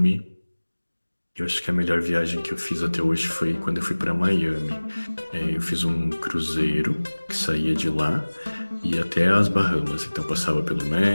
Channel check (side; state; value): both; inverted; correlation -1.00